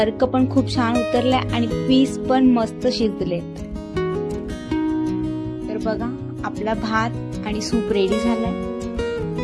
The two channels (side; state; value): both; identical; correlation 1.00